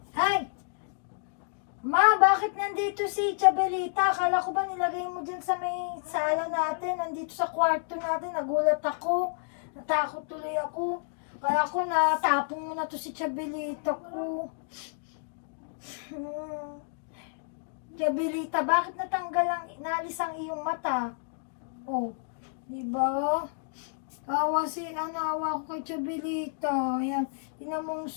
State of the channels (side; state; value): right; silent; digital silence